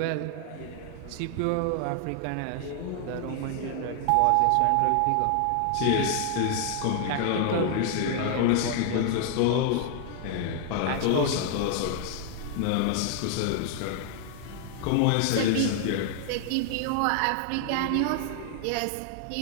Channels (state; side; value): different; both; correlation 0.00